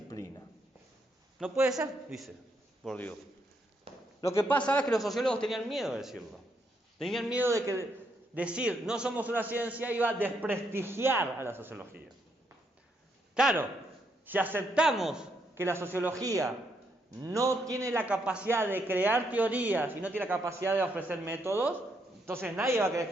No puede ser, dice Bourdieu. Lo que pasa es que los sociólogos tenían miedo de decirlo. Tenían miedo de que decir no somos una ciencia iba a desprestigiar a la sociología. Claro, si aceptamos que la sociología no tiene la capacidad de crear teorías y no tiene la capacidad de ofrecer métodos, entonces nadie va a querer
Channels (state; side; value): normal; both; correlation 0.76